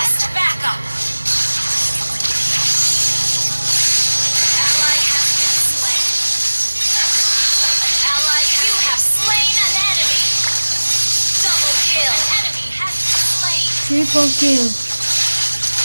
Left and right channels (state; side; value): inverted; both; correlation -1.00